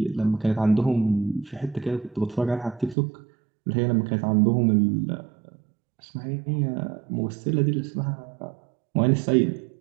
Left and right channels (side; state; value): left; drops out; at 3.0 s